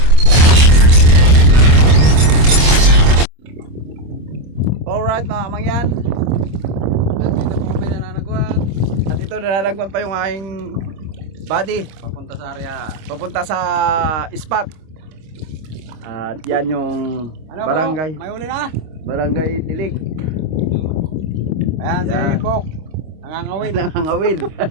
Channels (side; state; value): left; late; 26 ms